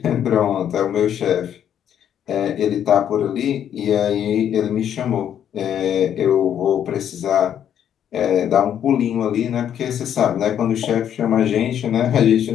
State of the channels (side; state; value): right; quieter; 9.6 dB